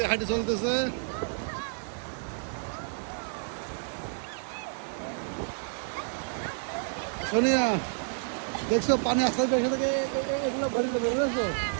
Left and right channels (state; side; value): silent; left; 58 dB below the other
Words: হাঁটি চলতেছে। সোনিয়া দেখছো পানি আস্তে আস্তে থেকে এগুলো ভরে যাবে, বুঝেছো?